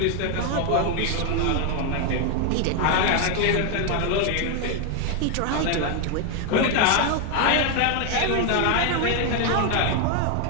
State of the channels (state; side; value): different; both; correlation 0.01